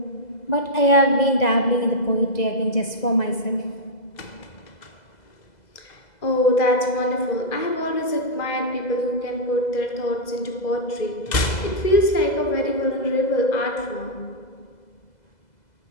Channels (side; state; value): right; late; 2.0 ms